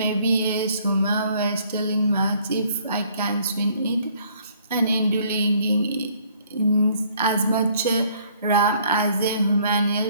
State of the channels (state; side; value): inverted; both; correlation -0.61